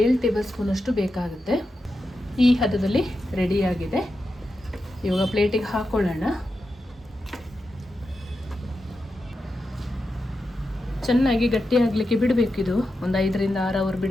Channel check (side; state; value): both; normal; correlation 0.89